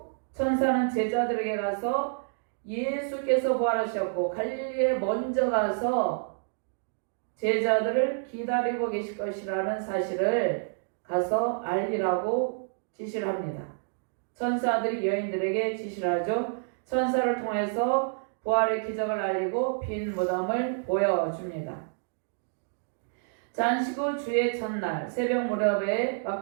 천사는 제자들에게 가서 예수께서 부활하셨고 갈릴리에 먼저 가서 제자들을 기다리고 계실 것이라는 사실을 가서 알리라고 지시를 합니다. 천사들이 여인들에게 지시를 하죠. 천사를 통해서 부활의 기적을 알리고 빈 무덤을 보여줍니다. 잔식 후 주의 첫날 새벽 무렵에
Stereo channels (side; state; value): left; silent; digital silence